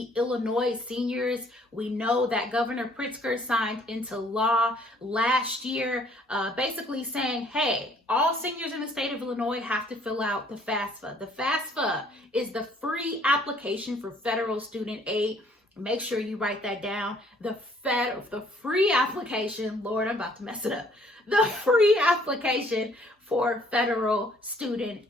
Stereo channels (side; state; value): both; normal; correlation 0.61